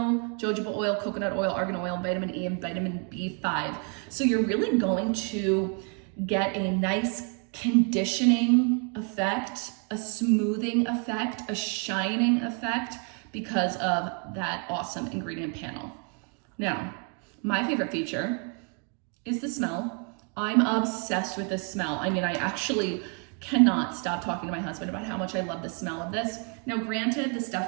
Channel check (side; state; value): left; quieter; 39.1 dB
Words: jojoba oil, coconut oil, argan oil, vitamin E, and vitamin B5. So you're really going to get a nice conditioning effect, a smoothing effect, a shining effect because of that awesome ingredient panel. Now, my favorite feature is the smell. I'm obsessed with this smell. I mean, I actually cannot stop talking to my husband about how much I love the smell of this. Now, granted, the stuff